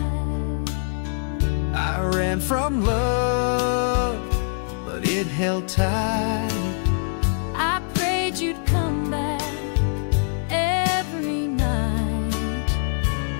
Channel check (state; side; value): silent; right; 59 dB below the other